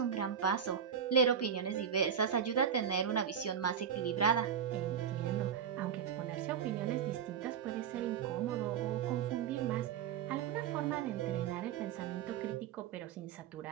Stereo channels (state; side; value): quieter; left; 7.9 dB